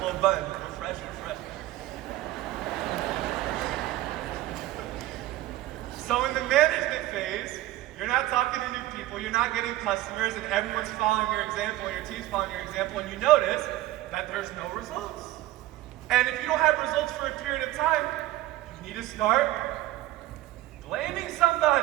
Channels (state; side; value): quieter; left; 15.5 dB